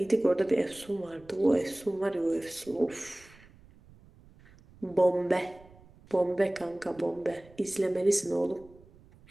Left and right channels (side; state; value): right; noise; rumble, 25 dB below the sound